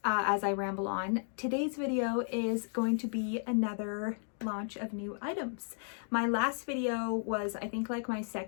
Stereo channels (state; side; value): silent; right; 55 dB below the other